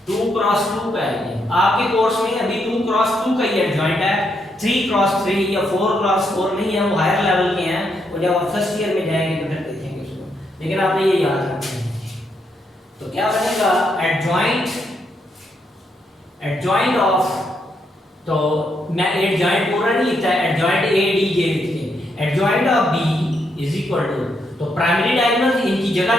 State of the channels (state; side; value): normal; both; correlation 0.78